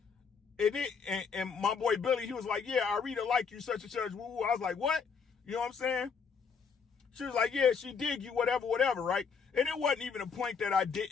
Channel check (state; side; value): quieter; right; 5.8 dB